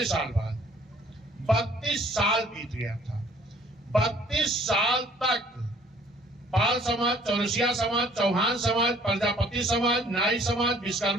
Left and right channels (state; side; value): normal; both; correlation 0.57